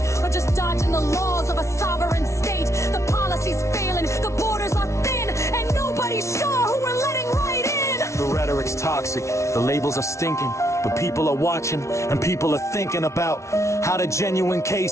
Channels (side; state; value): right; late; 0.14 ms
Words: or just dodging the laws of a sovereign state? The policy's failing, the borders are thin, and nobody's sure who we're letting right in. The rhetoric's toxic, the labels are stinking, but people are watching and people are thinking about how the genuine